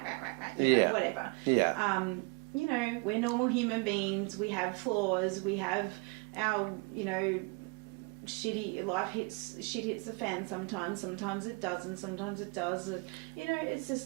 right, whatever. We're normal human beings. We have flaws. We have our shit hits the fan sometimes it doesn't, sometimes it does. It's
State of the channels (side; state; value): left; quieter; 31.0 dB